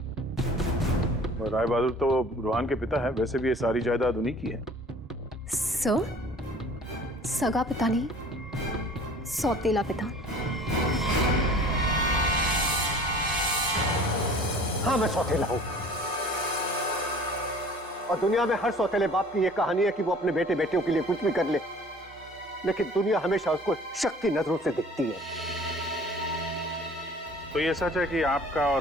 राय बहादुर तो रूहान के पिता है, वैसे भी ये सारी जायदाद उन्हीं की है। सर, सगा पिता नहीं, सौतेला पिता। हाँ, मैं सौतेला हूं, और दुनिया में हर सौतेले बाप की यह कहानी है कि वो अपने बेटे बेटियों के लिए कुछ भी कर ले, लेकिन दुनिया हमेशा उसको शक की नजरों से देखती है। तो ये सच है कि आपका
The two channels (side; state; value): both; normal; correlation 0.48